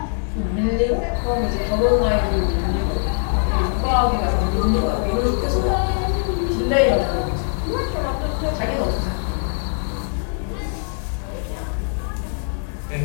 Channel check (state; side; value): silent; right; 57 dB below the other